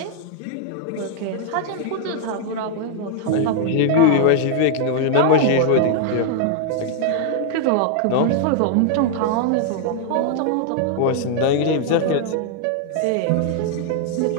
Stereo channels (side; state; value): both; different; correlation 0.00